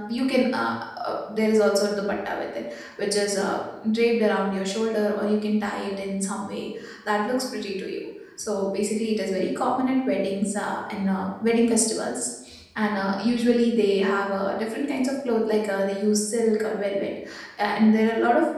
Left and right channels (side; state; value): both; identical; correlation 1.00